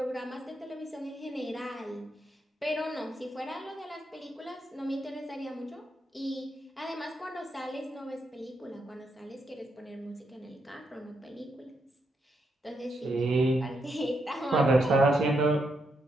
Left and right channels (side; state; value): both; normal; correlation 0.81